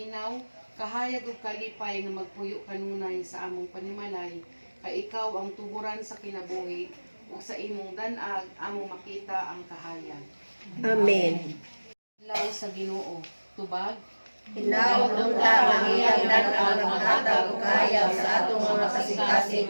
kahayag ug kalipay nga magpuyo kanunay sa among panimalay, kay ikaw ang tuburan sa kinabuhi, ug sa imong danag among makita ang kahayag. Amen. Adlaw sa Ginoo, tubag. Hinaot unta ang iyang dan-ang maghatag ug kahayag sa atong mga kasing-kasing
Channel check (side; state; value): both; inverted; correlation -1.00